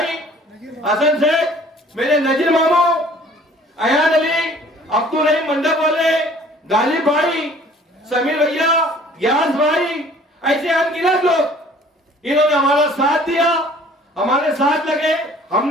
हसन सेठ, मेरे नजीर मामू, अयान अली, अब्दुल रहीम मंडप वाले, गालिब भाई, समीर भैया, ग्यास भाई, ऐसे अनगिनत लोग इन्होंने हमारा साथ दिया, हमारे साथ लगे।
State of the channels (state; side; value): normal; both; correlation 0.53